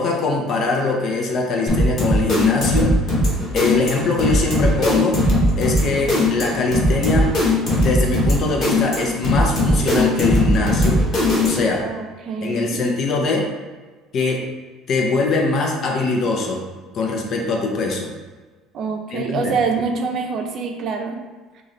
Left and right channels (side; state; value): both; normal; correlation 0.59